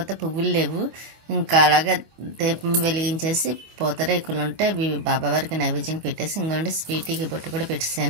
పువ్వులు లేవు. ఇంకా అలాగే దీపం వెలిగించేసి పూతరేకులు ఉంటే అవి బాబావారికి నైవేద్యం పెట్టేసి ఇంకోండి స్వీటీకి బొట్టు కూడా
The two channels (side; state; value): left; late; 25 ms